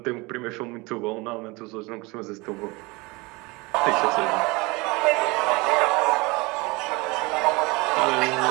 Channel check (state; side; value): quieter; left; 25.0 dB